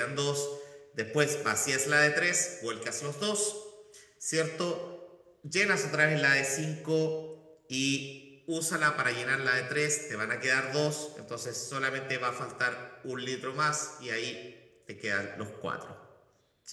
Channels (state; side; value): identical; both; correlation 1.00